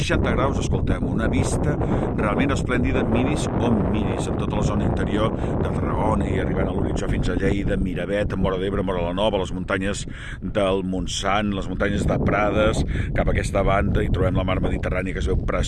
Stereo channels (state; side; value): identical; both; correlation 1.00